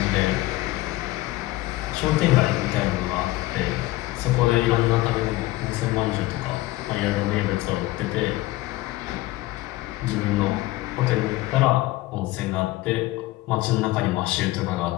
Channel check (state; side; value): quieter; right; 18.1 dB